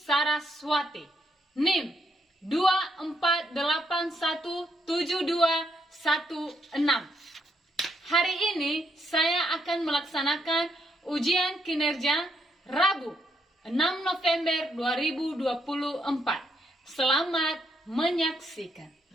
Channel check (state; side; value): normal; both; correlation 0.76